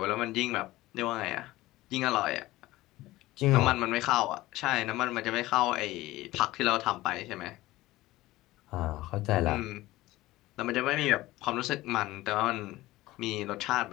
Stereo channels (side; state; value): right; quieter; 17.7 dB